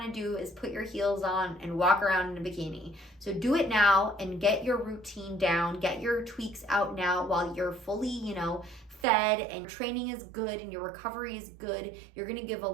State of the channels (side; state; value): left; drops out; at 9.1 s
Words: to do is put your heels on and walk around in a bikini. So do it now and get your routine down, get your tweaks out now while you're fully, you know, fed and training is good and your recovery is good. You're going to give a